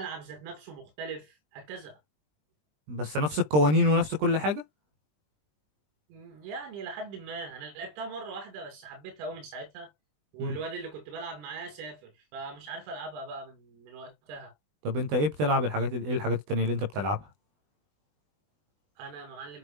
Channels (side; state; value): left; late; 20 ms